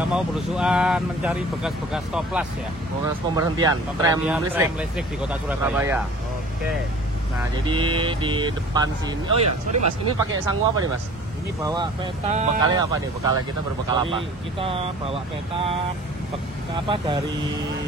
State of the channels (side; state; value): both; normal; correlation 0.46